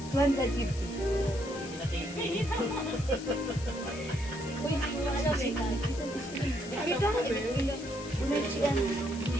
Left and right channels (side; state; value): left; noise; hiss, 15 dB below the sound